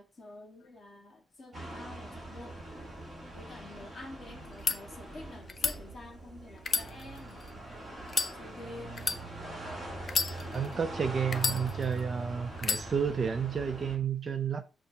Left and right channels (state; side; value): normal; both; correlation 0.75